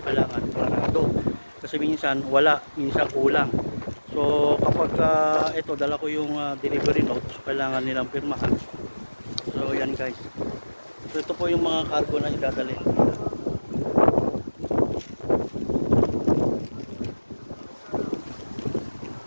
kailangan parado. Kasi minsan wala, minsan kulang. So kapag ito dala ko yung delivery note, so kailangan nilang pirmahan. So yan guys. So ito po yung mga cargo na idadalhin.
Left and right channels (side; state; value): both; inverted; correlation -1.00